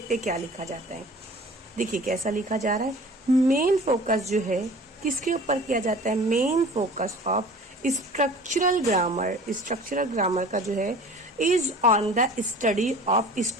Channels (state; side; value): normal; both; correlation 0.44